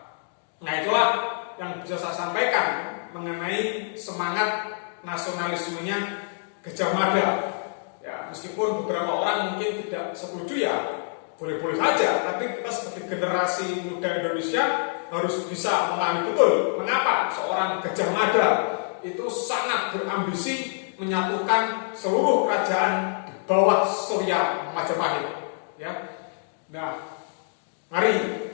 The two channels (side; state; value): right; silent; digital silence